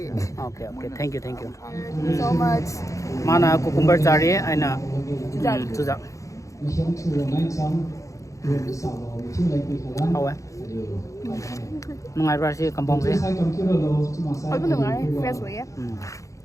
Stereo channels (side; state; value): right; late; 0.15 ms